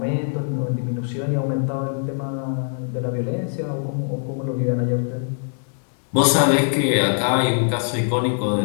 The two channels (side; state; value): right; silent; digital silence